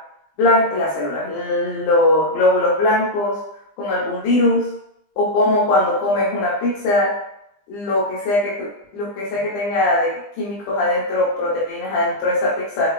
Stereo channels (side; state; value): right; late; 20 ms